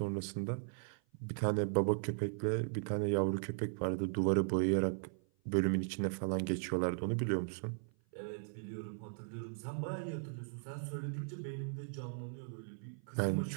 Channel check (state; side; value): silent; left; 53 dB below the other